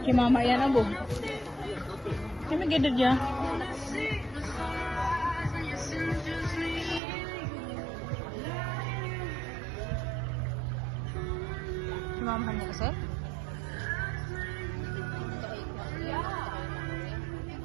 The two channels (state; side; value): drops out; left; at 7.0 s